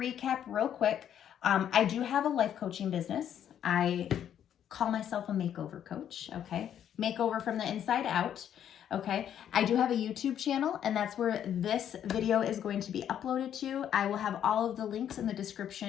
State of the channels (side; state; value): right; quieter; 9.8 dB